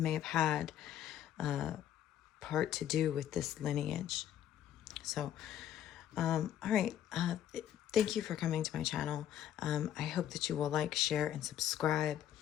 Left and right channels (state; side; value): quieter; right; 10.9 dB